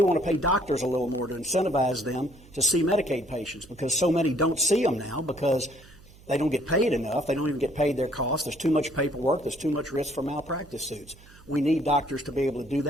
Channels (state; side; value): noise; right; hum, 23 dB below the sound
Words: want to pay doctors a little more to incentivize them to see Medicaid patients because so many don't see them now because they don't get paid enough. They don't even get paid their costs. There's too much paperwork. There's too much risk for malpractice suits. We need doctors to be able to do